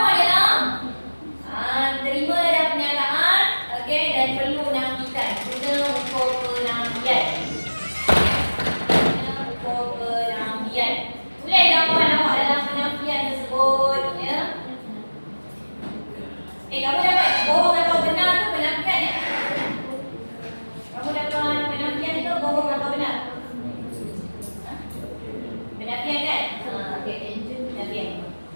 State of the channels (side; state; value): both; inverted; correlation -1.00